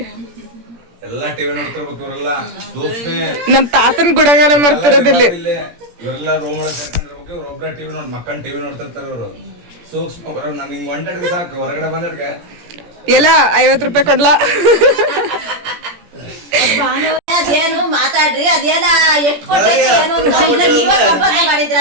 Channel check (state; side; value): late; left; 17 ms